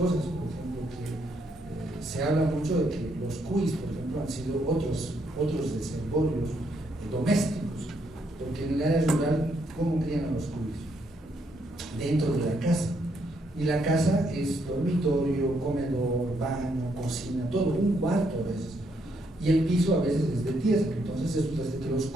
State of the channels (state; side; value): normal; both; correlation 0.74